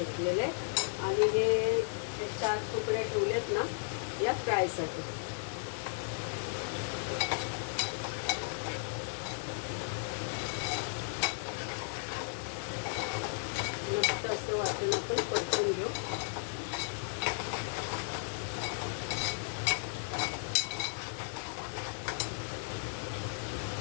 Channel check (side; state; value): right; silent; digital silence